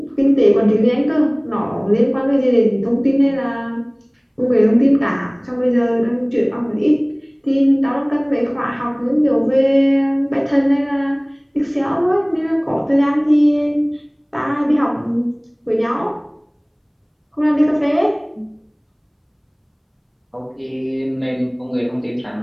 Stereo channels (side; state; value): both; identical; correlation 1.00